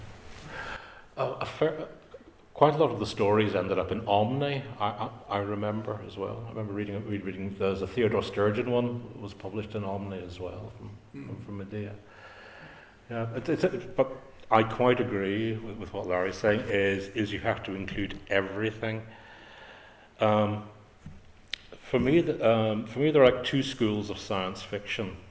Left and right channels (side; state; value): both; identical; correlation 1.00